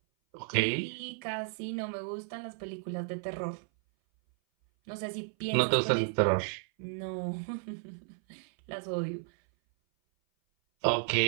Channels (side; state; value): left; silent; 56 dB below the other